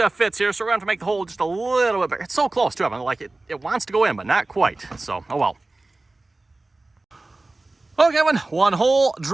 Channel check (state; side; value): quieter; left; 3.1 dB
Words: fits here, so we're going to have to make the hole just a little bit bigger. It's so close to it, like it wants to go in, but not quite. So, oh well. Okay, one hole